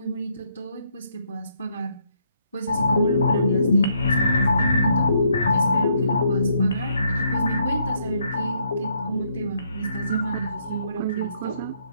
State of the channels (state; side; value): inverted; both; correlation -0.72